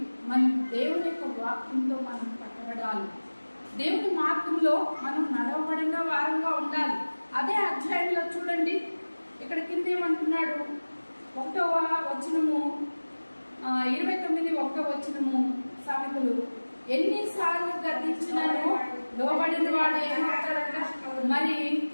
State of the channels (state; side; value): inverted; both; correlation -1.00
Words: మనం దేవుని యొక్క వాక్యంతో మనం కట్టబడాలి. దేవుని మార్గంలో మనం నడవబడిన వారంగా ఉండాలి. అదే అధ్యాయంలో చూడండి, ఇక్కడ కింద ఏమంటున్నాడు? 1వ వచనము 29 1వ వచనము సామెతలు, ఎన్నిసార్లు గద్దించినాను లోబడిన వాడు ఏమవుతాడంట, మరి